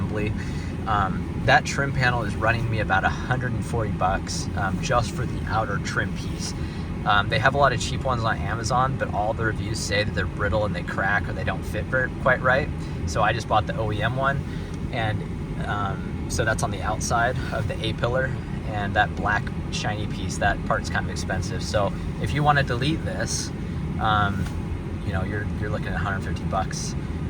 That trim panel is running me about $140 just for the outer trim piece. They have a lot of cheap ones on Amazon, but all the reviews say that they're brittle and they crack or they don't fit quite right. So I just bought the OEM one, and so that's on the outside of the A-pillar, and that black shiny piece, that part's kind of expensive. So if you want to delete this, you know, you're looking at $150,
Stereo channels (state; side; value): identical; both; correlation 1.00